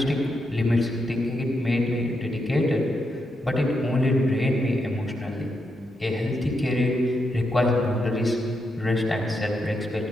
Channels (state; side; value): normal; both; correlation 0.82